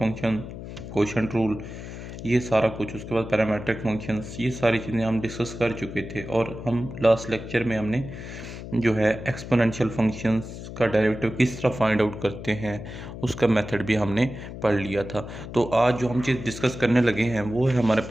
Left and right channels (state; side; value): noise; left; hum, 10 dB below the sound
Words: कोशेंट रूल, ये सारा कुछ। उसके बाद पैरामीट्रिक फंक्शंस, ये सारी चीज़ें हम डिस्कस कर चुके थे। और हम लास्ट लेक्चर में हमने जो है एक्सपोनेंशियल फंक्शंस का डेरिवेटिव किस तरह फाइंड आउट करते हैं उसका मेथड भी हमने पढ़ लिया था। तो आज जो हम चीज़ डिस्कस करने लगे हैं वो है हमारे